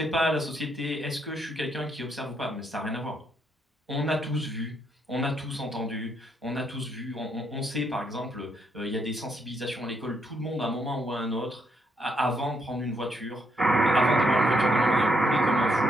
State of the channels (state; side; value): normal; both; correlation 0.75